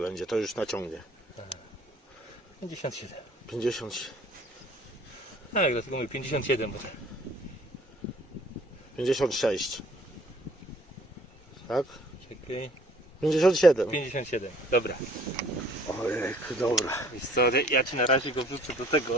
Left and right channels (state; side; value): normal; both; correlation 0.56